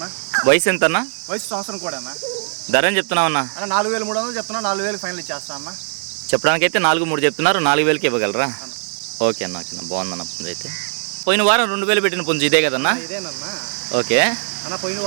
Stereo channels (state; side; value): silent; left; digital silence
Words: వయసు ఎంత అన్న? వయసు సంవత్సరం కూడా అన్న. ధర అని చెప్తున్నావు అన్న? 4300 చెప్తున్నా, 4000 ఫైనల్ ఇచ్చేస్తా అన్న. చెప్పడానికి అయితే 4,300 చెప్తున్నారు, 4000కి ఇవ్వగలరా? ఓకే అన్న బాగుందన్న పుంజు. అయితే పోయిన వారం 2000 పెట్టిన పుంజు ఇదే కదన్నా? ఇదేనన్నా. ఓకే అన్న పోయిన